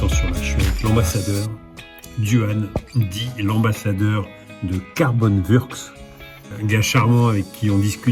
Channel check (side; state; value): both; identical; correlation 1.00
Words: là, je suis avec l'ambassadeur Duan, dit l'ambassadeur de Carbon Works, un gars charmant avec qui on